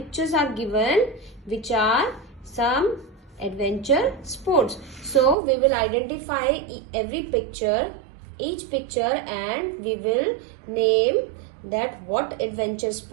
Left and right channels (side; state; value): left; drops out; at 5.4 s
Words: are given which are some adventure sports. So we will identify every picture, each picture, and we will name that what adventure